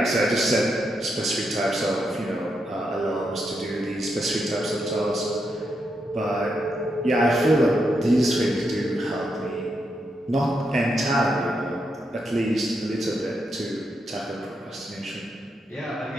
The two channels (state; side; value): normal; both; correlation 0.82